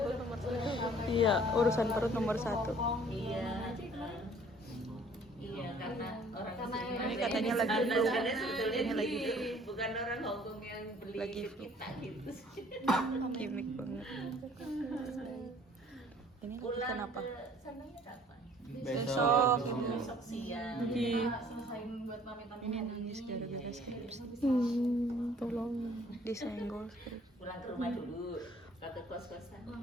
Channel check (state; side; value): normal; both; correlation 0.56